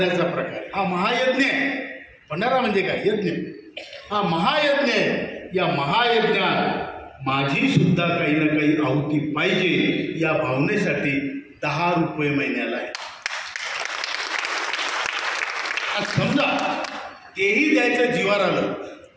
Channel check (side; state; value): both; identical; correlation 1.00